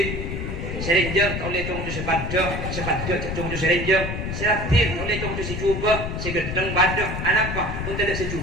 Serenjang tak boleh tunggu sepadak cak tunggu serenjang. Seratin boleh tunggu si cuba, si gedeng badak. Apa? Pun tidak si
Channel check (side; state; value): left; noise; rumble, 4 dB below the sound